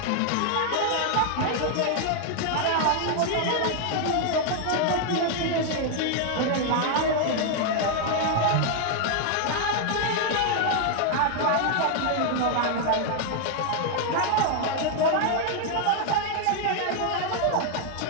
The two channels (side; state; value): both; different; correlation 0.00